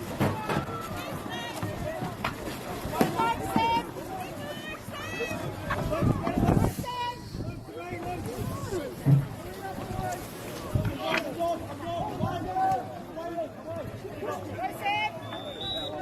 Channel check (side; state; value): both; identical; correlation 1.00